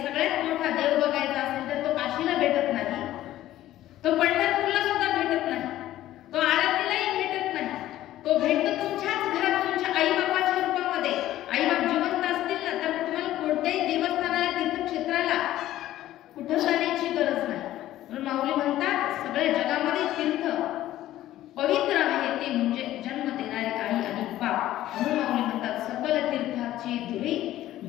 सगळ्यात मोठा देव बघायचा असेल तर तो काशीला भेटत नाही, तो पंढरपूरला सुद्धा भेटत नाही, तो आरतीलाही भेटत नाही. तो भेटतो तुमच्याच घरात, तुमच्या आई बापाच्या रूपामध्ये. आई बाप जिवंत असतील ना तर तुम्हाला कोणत्याही देवस्थानाला, तीर्थक्षेत्राला कुठं जाण्याची गरज नाही. म्हणून माऊली म्हणतात सगळ्या जगामध्ये तीर्थ पवित्र आहे ते म्हणजे जन्म देणारे आई आणि बाप. म्हणून माऊली म्हणतात सकल तीर्थाचे धुरे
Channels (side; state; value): right; quieter; 14.0 dB